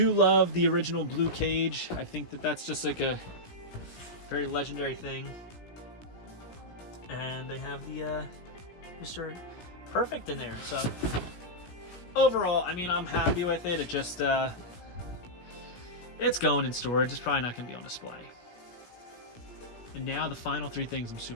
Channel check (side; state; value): right; late; 17 ms